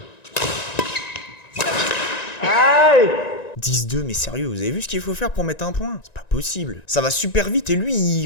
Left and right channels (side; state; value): right; late; 1.9 ms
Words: Aïe! 10-2, mais sérieux, vous avez vu ce qu'il faut faire pour mettre un point? C'est pas possible. Ça va super vite et lui,